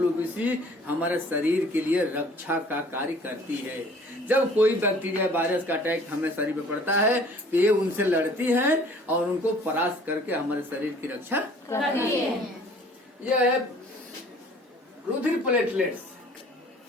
हमारे शरीर के लिए रक्षा का कार्य करती है। जब कोई बैक्टीरिया वायरस का अटैक हमें शरीर पे पड़ता है तो ये उनसे लड़ती है और उनको परास्त करके हमारे शरीर की रक्षा करती है। यह है रुधिर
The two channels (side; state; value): both; normal; correlation 0.52